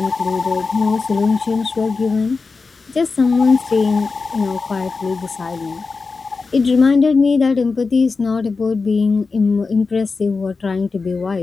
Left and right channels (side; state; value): right; quieter; 4.4 dB